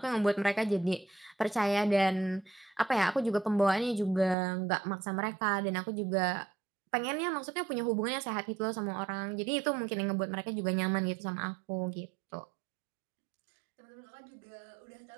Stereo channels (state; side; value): drops out; left; at 4.4 s